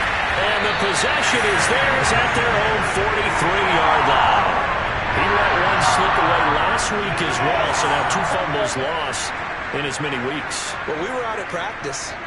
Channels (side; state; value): both; identical; correlation 1.00